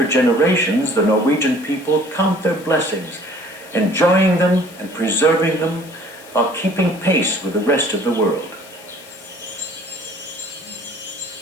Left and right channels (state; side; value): noise; left; hiss, 21 dB below the sound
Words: generations, the Norwegian people count their blessings, enjoying them and preserving them while keeping pace with the rest of the world.